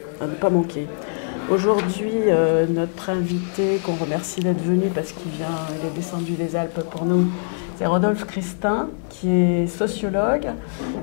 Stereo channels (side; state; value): right; silent; 64 dB below the other